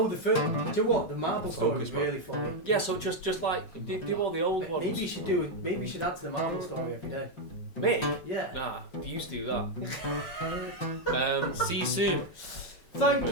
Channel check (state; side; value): late; right; 5.8 ms